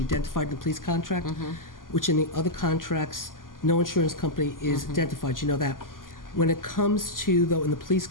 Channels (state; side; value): late; right; 0.90 ms